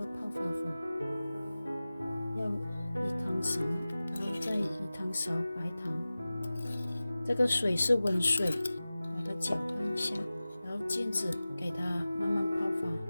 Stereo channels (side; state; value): both; inverted; correlation -0.97